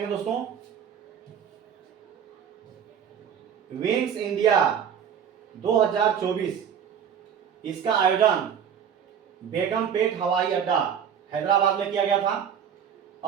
दोस्तों, विंग्स इंडिया 2024, इसका आयोजन बेगमपेट हवाई अड्डा हैदराबाद में किया गया था।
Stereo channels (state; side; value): quieter; left; 8.2 dB